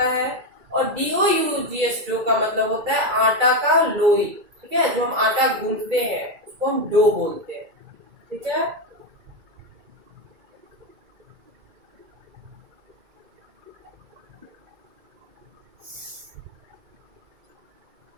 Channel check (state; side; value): late; left; 2.3 ms